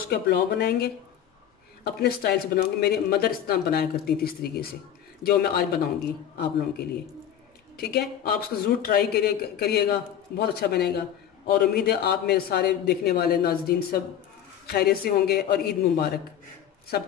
का पुलाव बनाएंगे। अपने स्टाइल से बनाऊंगी। मेरी मदर इस तरह बनाया करती थी, इस तरीके से, जो मैं आज बनाऊंगी आप लोगों के लिए। ठीक है, आप उसको ज़रूर ट्राई करिएगा, बहुत अच्छा बनेगा। और उम्मीद है आप मेरे सारे देखने वाले नाज़रीन सब खैरियत से होंगे और ईद मुबारक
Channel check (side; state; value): right; quieter; 9.9 dB